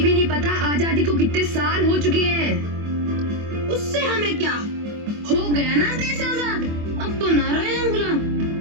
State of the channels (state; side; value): late; left; 24 ms